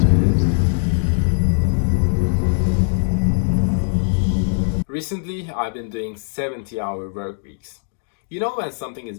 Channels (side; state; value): right; silent; digital silence